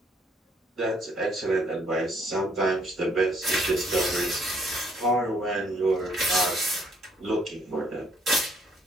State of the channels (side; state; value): both; normal; correlation 0.66